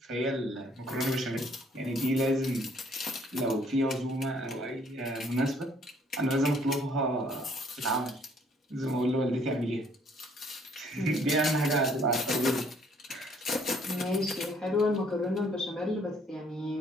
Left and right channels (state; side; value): normal; both; correlation 0.63